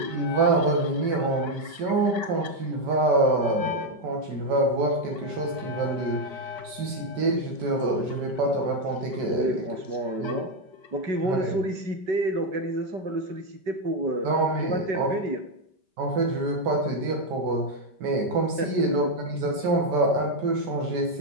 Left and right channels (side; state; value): left; late; 5.2 ms